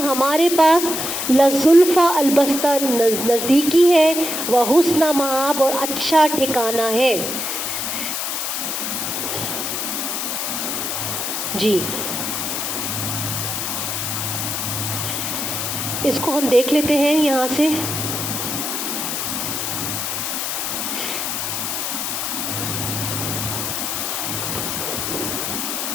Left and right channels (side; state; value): left; noise; hiss, 2 dB below the sound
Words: ہمارے پاس، لزلفیٰ، البتہ نزدیکی ہے، وحسن مآب، اور اچھا ٹھکانہ ہے، جی، اس کو ہم دیکھ لیتے ہیں یہاں سے.